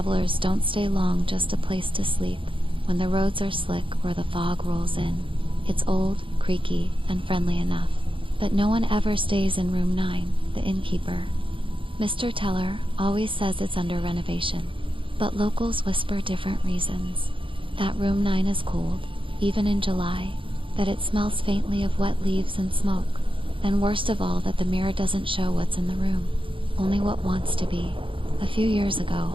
don't stay long, just a place to sleep when the roads are slick or the fog rolls in. It's old, creaky, and friendly enough. But no one ever stays in room 9, the innkeeper. Mr. Teller always says it's under renovation, but locals whisper different reasons. That room 9 is cold, even in July, that it smells faintly of wet leaves and smoke, and worst of all, that the mirror doesn't show what's in the room, only what wants to be. A few years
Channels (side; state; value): left; late; 0.25 ms